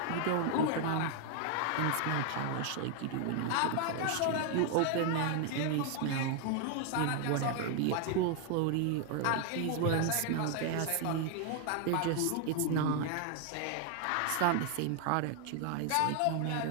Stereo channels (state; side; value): different; both; correlation 0.00